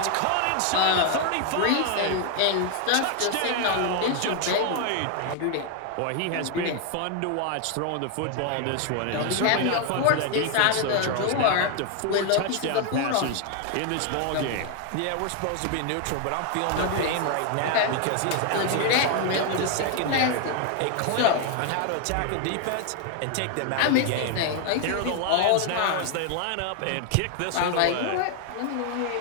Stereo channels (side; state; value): both; different; correlation 0.00